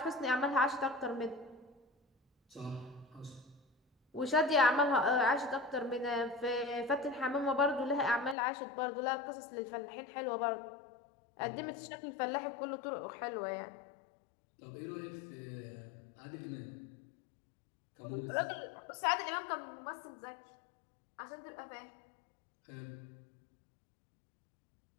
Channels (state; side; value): drops out; right; at 8.3 s